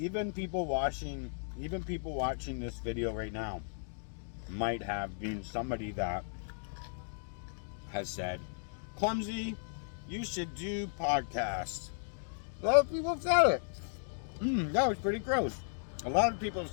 people watching this video right now might have been somebody that has said, Clumsy, you should do podcasts. A lot of people have said it. That was pretty gross. A lot of people have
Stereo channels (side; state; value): right; silent; digital silence